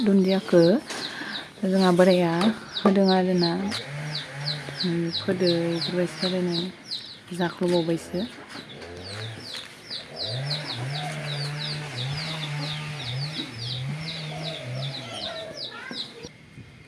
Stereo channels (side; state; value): both; identical; correlation 1.00